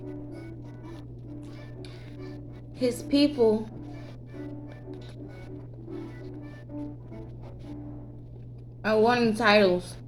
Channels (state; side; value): identical; both; correlation 1.00